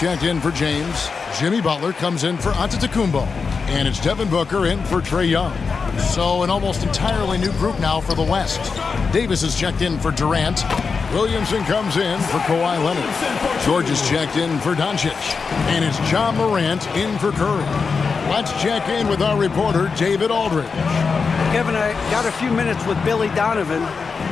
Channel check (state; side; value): quieter; right; 5.1 dB